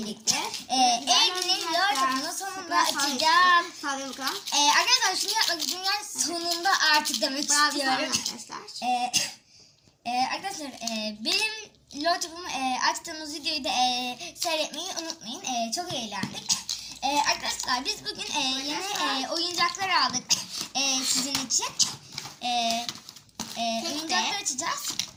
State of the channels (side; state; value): both; identical; correlation 1.00